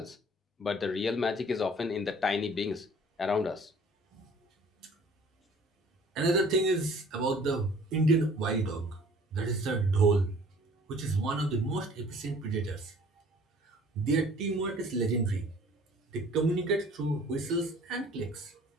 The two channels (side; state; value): both; normal; correlation 0.52